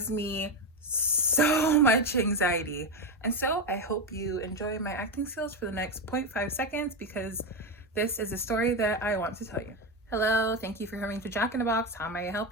me so much anxiety. And so I hope you enjoy my acting skills for the next 0.5 seconds, because this is a story that I want to tell you. Hello, thank you for coming to Jack in the Box. How may I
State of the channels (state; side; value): normal; both; correlation 0.12